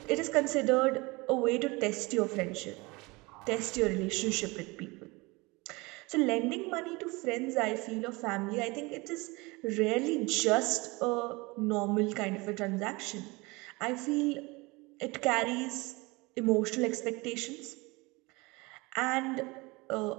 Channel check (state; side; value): quieter; left; 24.7 dB